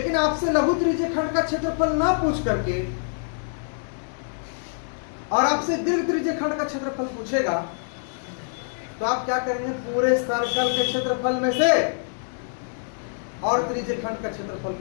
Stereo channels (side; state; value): right; silent; 60 dB below the other